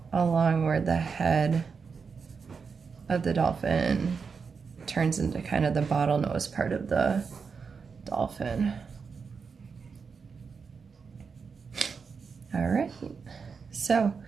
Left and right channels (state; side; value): quieter; left; 5.5 dB